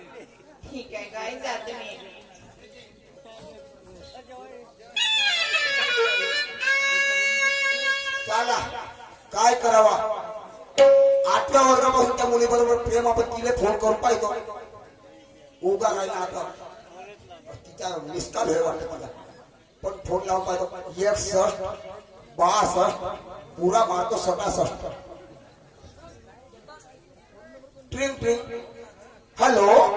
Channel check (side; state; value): both; identical; correlation 1.00